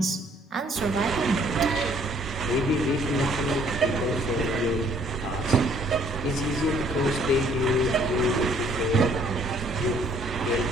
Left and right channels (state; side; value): normal; both; correlation 0.61